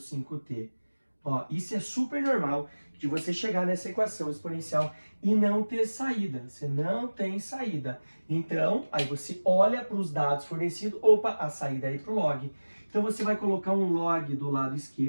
Ó, isso é super normal de você chegar nessa equação exponencial e não ter saída. Você não tem saída. Então, aí você olha para os dados fornecidos, opa, a saída é ir para o log. Então você vai colocar um log do lado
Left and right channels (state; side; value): inverted; both; correlation -1.00